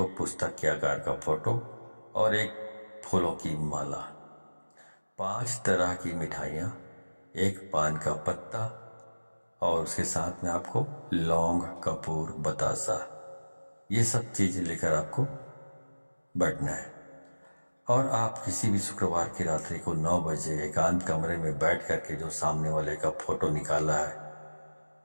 पुस्तक के आकार का फोटो और एक फूलों की माला, 5 तरह की मिठाइयाँ, एक पान का पत्ता, और उसके साथ में आपको लौंग, कपूर, बतासा, ये सब चीज़ें लेकर आपको बैठना है। और आप किसी भी शुक्रवार की रात्रि को 9 बजे एकांत कमरे में बैठ करके जो सामने वाले का फोटो निकाला है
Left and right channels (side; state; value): both; inverted; correlation -1.00